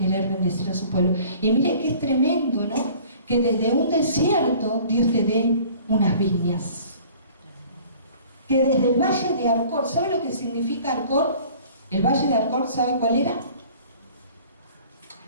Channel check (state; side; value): inverted; both; correlation -0.49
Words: bendecir a su pueblo. Y mire que es tremendo, ¿no? Que desde un desierto Dios te dé unas viñas. Que desde el valle de Arcor, ¿sabe lo que significa Arcor? El valle de Arcor, ¿sabe cuál era?